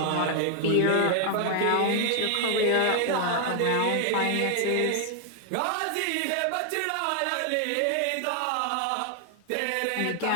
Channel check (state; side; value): different; both; correlation 0.00